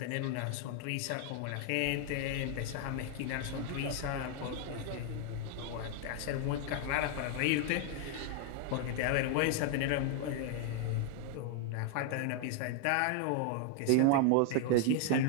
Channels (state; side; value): different; both; correlation 0.00